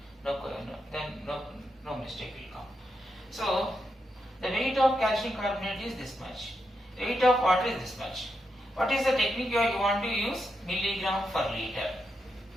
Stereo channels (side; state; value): both; normal; correlation 0.84